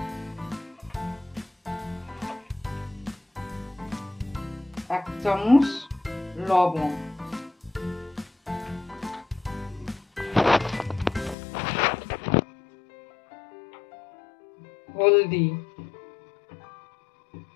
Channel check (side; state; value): right; drops out; at 11.4 s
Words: এক চামচ লবণ, হলদি,